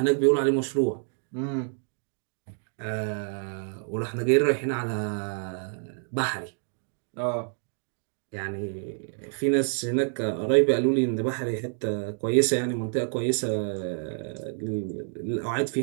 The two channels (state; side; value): silent; left; 58 dB below the other